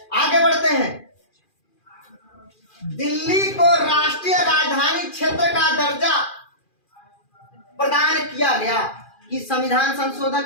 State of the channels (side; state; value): right; late; 2.4 ms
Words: आगे बढ़ते हैं। दिल्ली को राष्ट्रीय राजधानी क्षेत्र का दर्जा प्रदान किया गया कि संविधान